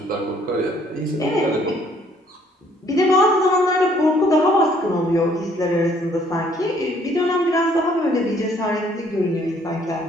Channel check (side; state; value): both; normal; correlation 0.63